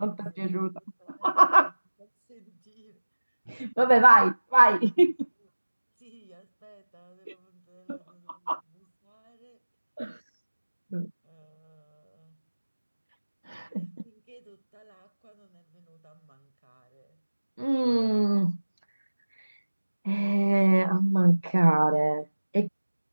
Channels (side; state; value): both; inverted; correlation -1.00